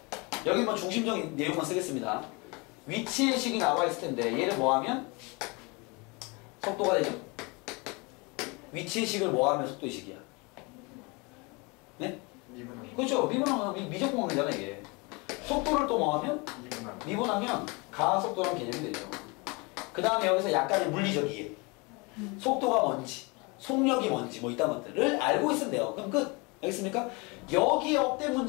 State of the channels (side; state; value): right; quieter; 28.3 dB